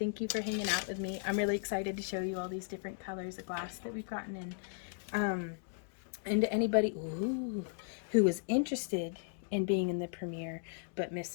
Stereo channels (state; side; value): silent; right; digital silence